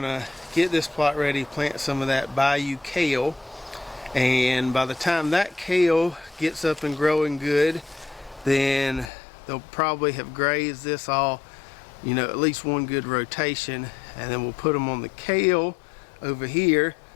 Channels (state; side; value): drops out; right; at 9.1 s